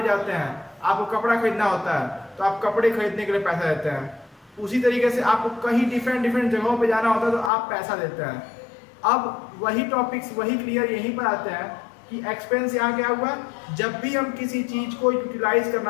जाते हैं, आपको कपड़ा खरीदना होता है तो आप कपड़े खरीदने के लिए पैसा देते हैं। उसी तरीके से आपको कहीं डिफरेंट जगहों पे जाना होता है तो आप पैसा देते हैं। अब वही टॉपिक्स वही क्लियर यहीं पर आते हैं कि एक्सपेंस यहाँ क्या हुआ? जब भी हम किसी चीज को यूटिलाइज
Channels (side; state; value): right; drops out; at 7.5 s